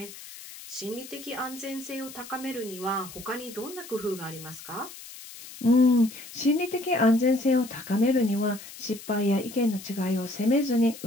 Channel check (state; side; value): noise; left; hiss, 15 dB below the sound